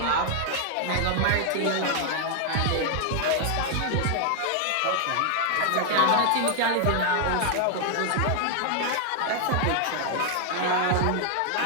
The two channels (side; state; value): both; different; correlation 0.00